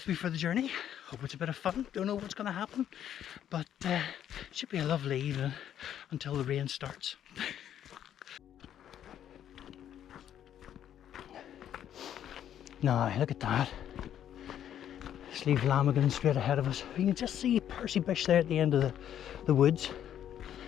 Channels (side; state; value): right; quieter; 10.3 dB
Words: me for the journey. Hope it's a bit of fun. Don't know what's going to happen, but it should be a lovely evening until the rain starts. Now look at that. Slievelamagan straight ahead of us. You can just see Percy Bush there at the end of the woods.